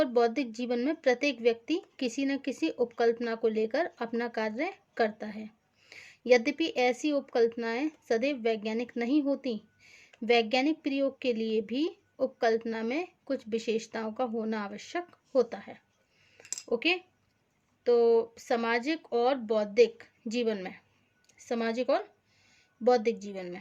बौद्धिक जीवन में प्रत्येक व्यक्ति किसी न किसी उपकल्पना को लेकर अपना कार्य करता है. यद्यपि ऐसी उपकल्पनाएं सदैव वैज्ञानिक नहीं होती. वैज्ञानिक प्रयोग के लिए भी उपकल्पना में कुछ विशेषताओं का होना आवश्यक होता है. ओके. तो सामाजिक और बौद्धिक जीवन में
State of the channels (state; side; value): identical; both; correlation 1.00